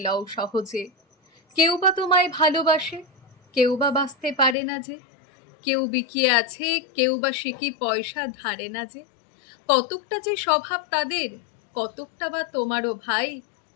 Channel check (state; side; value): drops out; right; at 4.5 s